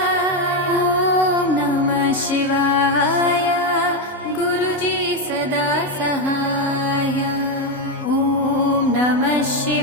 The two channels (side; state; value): both; normal; correlation 0.08